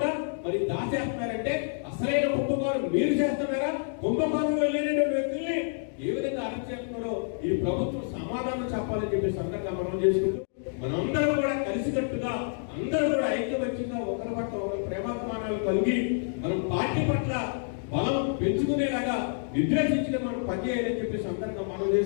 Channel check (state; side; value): silent; right; digital silence